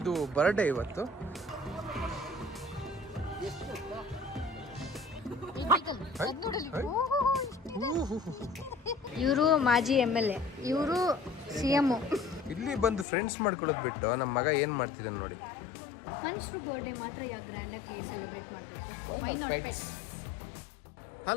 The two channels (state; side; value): drops out; right; at 13.1 s